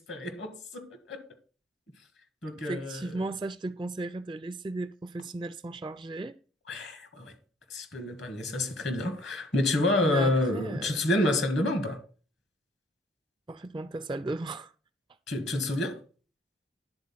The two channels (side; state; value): both; normal; correlation 0.60